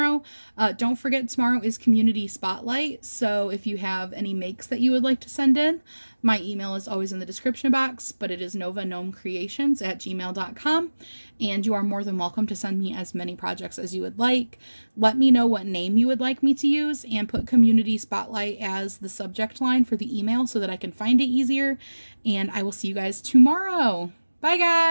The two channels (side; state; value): both; inverted; correlation -1.00